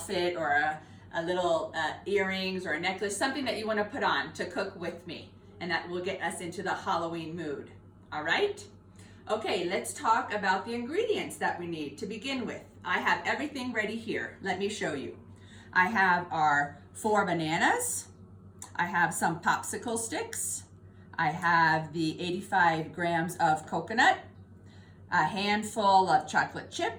or a little earrings or a necklace, something that you want to put on to cook with me, and that will get us into the Halloween mood. All right? Okay, let's talk about the ingredients that we need to begin with. I have everything ready here. Let me show you. I have our 4 bananas. I have some popsicle sticks. I have the 85 grams of coconut, a handful of chocolate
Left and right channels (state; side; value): identical; both; correlation 1.00